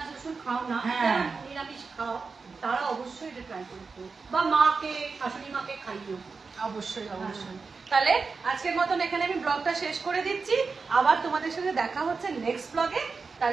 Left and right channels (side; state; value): left; quieter; 4.6 dB